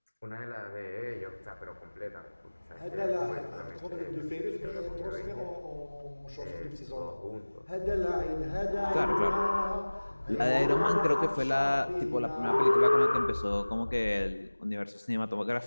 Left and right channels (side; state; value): both; inverted; correlation -1.00